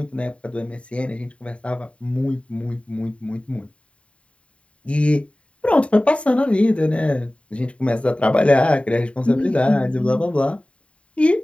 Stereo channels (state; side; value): late; right; 0.062 ms